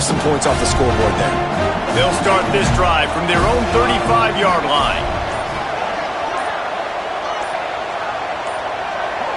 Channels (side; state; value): both; identical; correlation 1.00